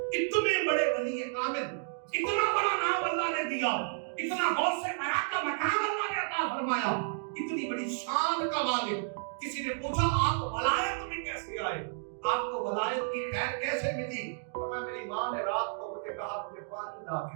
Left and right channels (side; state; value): left; silent; digital silence